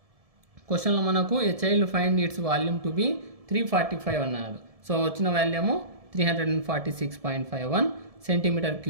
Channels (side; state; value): left; late; 1.7 ms